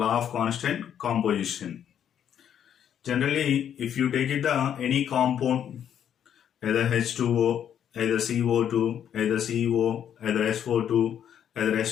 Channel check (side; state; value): right; quieter; 9.3 dB